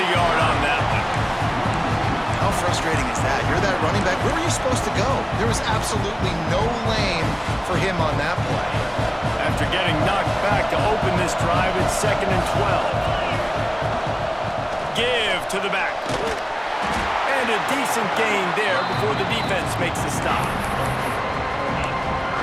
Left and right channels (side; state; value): both; identical; correlation 1.00